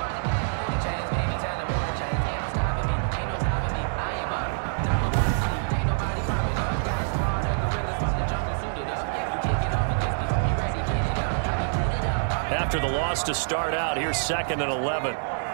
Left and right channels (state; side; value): silent; left; 61 dB below the other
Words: After the loss to start out, here's 2nd and 11.